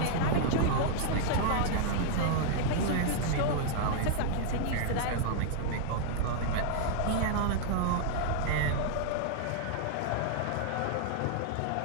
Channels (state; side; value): different; both; correlation -0.01